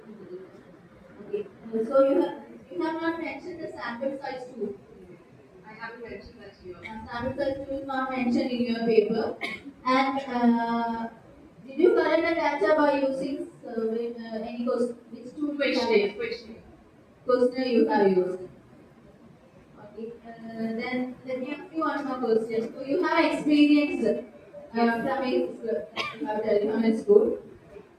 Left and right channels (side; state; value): both; identical; correlation 1.00